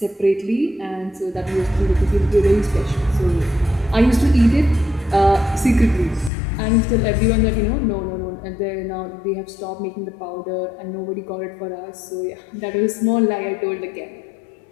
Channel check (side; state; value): right; drops out; at 6.3 s